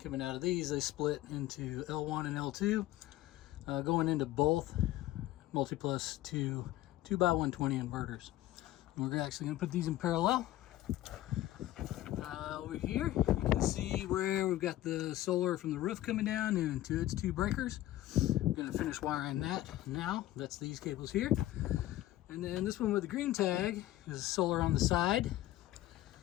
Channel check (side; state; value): right; quieter; 15.2 dB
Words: out of these they split into L1 and L2, going into both Multiplus 2x120 inverters. And we're actually going to put these in parallel. Over here you can see where we've got the solar from the roof coming down into its 2 breakers. We're going to finish wiring that now. That's these cables here. And then this one with the green tag is solar on the side.